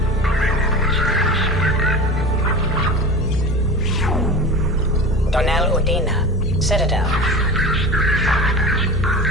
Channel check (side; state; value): both; normal; correlation 0.31